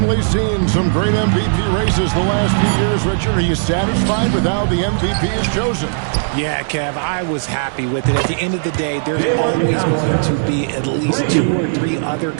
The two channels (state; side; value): silent; left; digital silence